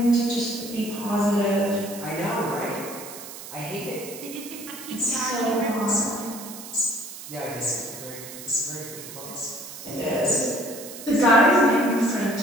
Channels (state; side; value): noise; right; hiss, 12 dB below the sound